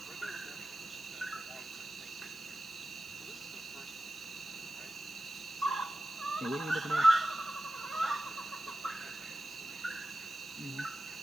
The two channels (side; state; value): right; noise; hiss, 21 dB below the sound